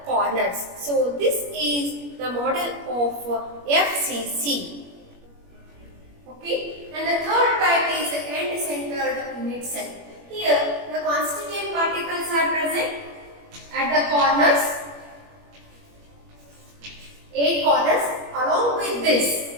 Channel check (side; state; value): left; late; 21 ms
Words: corners. So, this is the model of FCC. Okay. And the third type is end-centered unit cell. Here, the constituent particles are present at the corners, 8 corners. Along with this,